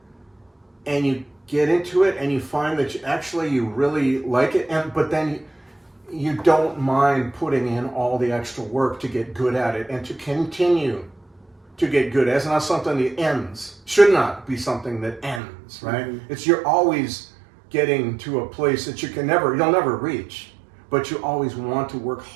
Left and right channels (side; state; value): left; drops out; at 15.4 s